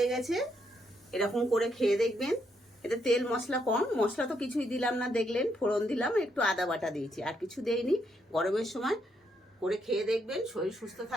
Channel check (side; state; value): both; normal; correlation 0.77